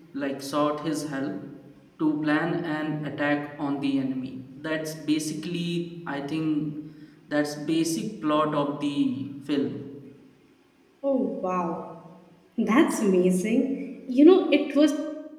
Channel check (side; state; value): both; identical; correlation 1.00